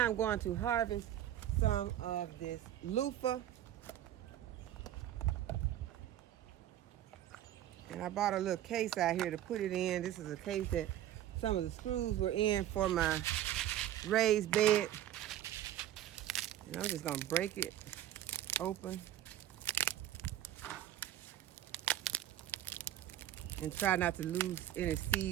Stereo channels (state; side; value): quieter; left; 12.3 dB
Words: I'm going to harvest some of this loofah. And I bought a little case out here to put it in. This is a case that some of the screws were in for my raised bed. And I'm just going to break it open and try not to lose any